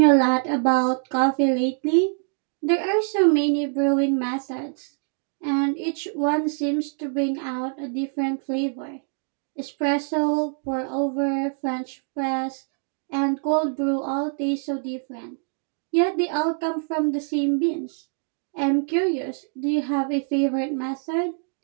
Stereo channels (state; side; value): silent; left; 62 dB below the other